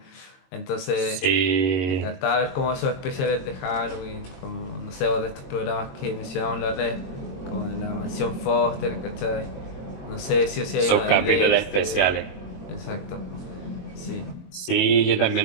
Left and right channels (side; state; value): right; late; 21 ms